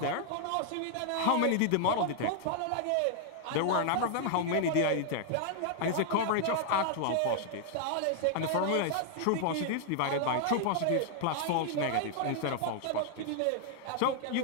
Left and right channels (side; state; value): both; different; correlation 0.00